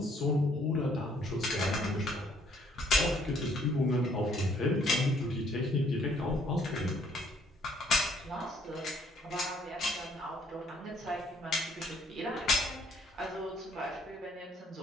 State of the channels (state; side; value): normal; both; correlation 0.64